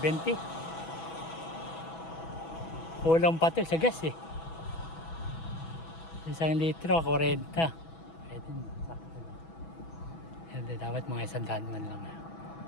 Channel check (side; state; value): right; late; 6.1 ms